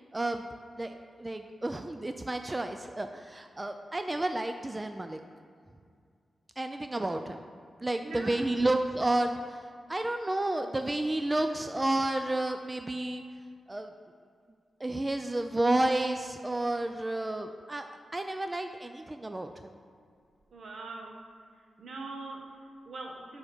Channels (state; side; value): normal; both; correlation 0.97